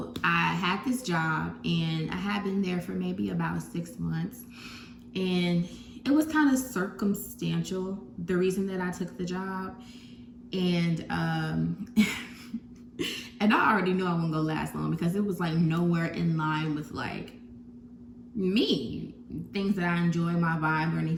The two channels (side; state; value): both; identical; correlation 1.00